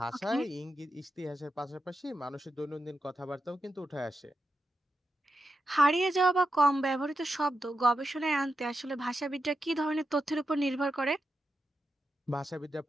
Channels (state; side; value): normal; both; correlation 0.87